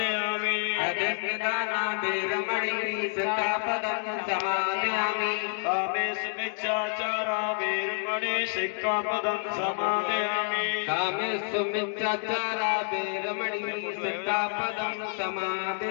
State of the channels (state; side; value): silent; right; digital silence